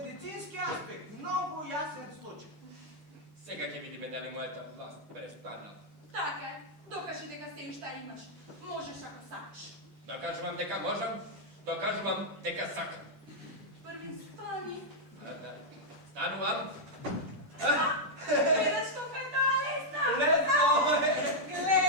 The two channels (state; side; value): late; left; 10 ms